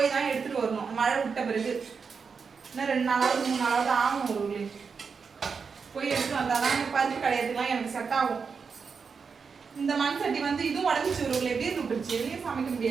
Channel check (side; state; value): left; quieter; 5.5 dB